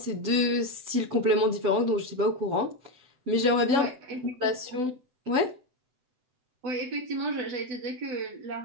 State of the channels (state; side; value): late; left; 7.9 ms